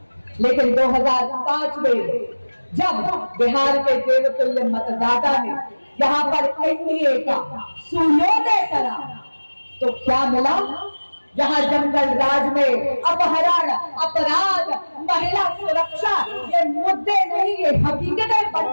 लेकिन 2005 में जब बिहार के देवतुल्य मतदाता ने यहाँ पर एनडीए का सूर्योदय करा, तो क्या मिला? जहाँ जंगल राज में अपहरण, अपराध, महिला सुरक्षा ये मुद्दे नहीं, ये हकीकतें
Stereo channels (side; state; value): both; inverted; correlation -1.00